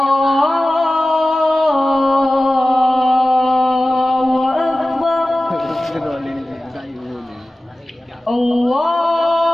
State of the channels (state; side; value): normal; both; correlation 0.96